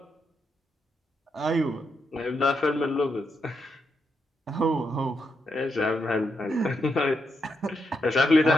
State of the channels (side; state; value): both; normal; correlation 0.82